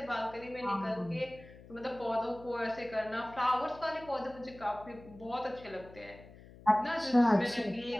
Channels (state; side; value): noise; left; hum, 20 dB below the sound